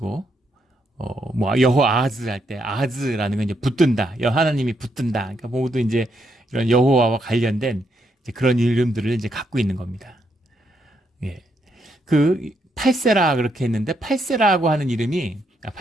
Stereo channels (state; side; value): normal; both; correlation 0.77